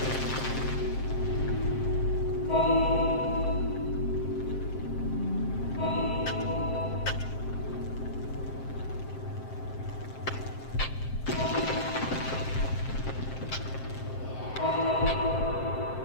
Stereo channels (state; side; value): late; right; 7.6 ms